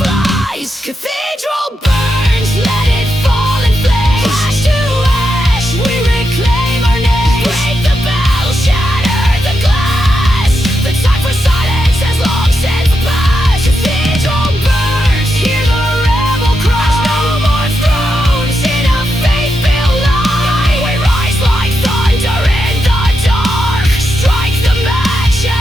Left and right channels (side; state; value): both; normal; correlation 0.85